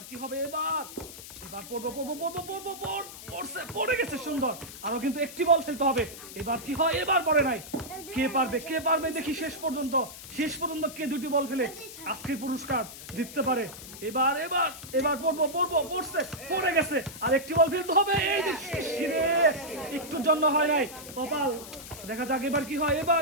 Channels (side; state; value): left; noise; hiss, 14 dB below the sound